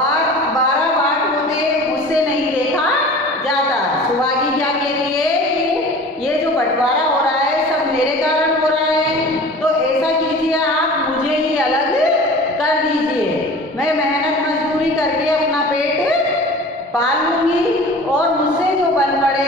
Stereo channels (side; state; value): both; normal; correlation 0.40